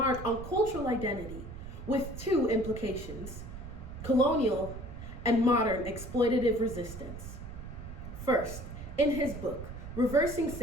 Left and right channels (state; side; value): noise; right; rumble, 10 dB below the sound